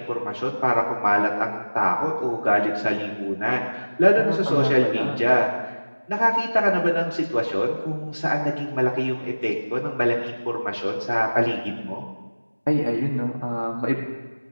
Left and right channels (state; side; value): inverted; both; correlation -1.00